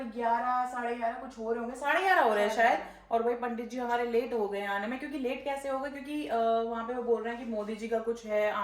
11, 11:30 कुछ हो रहे होंगे, 11:30 हो रहे हैं शायद। और भाई पंडित जी हमारे लेट हो गए आने में, क्योंकि लेट कैसे हो गए, क्योंकि वहाँ पे वो बोल रहे हैं कि मोदी जी का कुछ है,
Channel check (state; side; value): identical; both; correlation 1.00